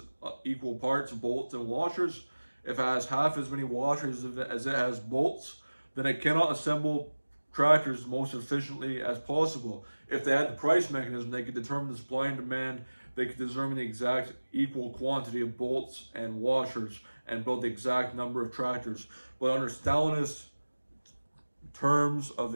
equal parts of bolts and washers, if it has half as many washers as it has bolts, then it cannot assemble tractors most efficiently as possible. If they had the price mechanism, they could determine the supply and demand. They could determine the exact equal quantity of bolts and washers and build the exact number of tractors. But under Stalinist terms of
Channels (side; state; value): both; inverted; correlation -1.00